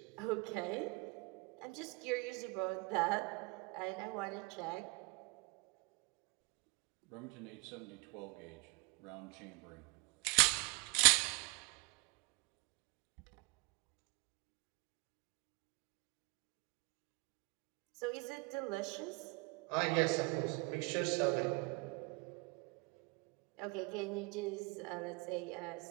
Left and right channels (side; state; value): left; quieter; 27.2 dB